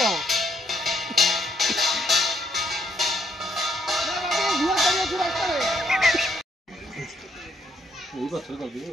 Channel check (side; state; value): both; normal; correlation 0.72